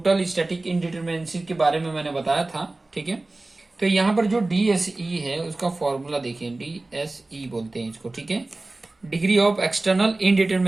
स्टैटिक इनडिटरमिनेंसी के बारे में मैंने बताया था। ठीक है। तो यहाँ पर जो DSE है उसका फॉर्मूला देखिए, DSE बोलते हैं इसको। ठीक है। डिग्री ऑफ एक्सटर्नल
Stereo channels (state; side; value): quieter; left; 3.0 dB